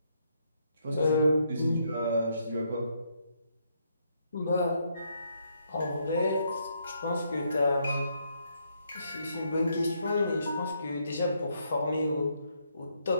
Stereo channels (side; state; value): both; inverted; correlation -0.75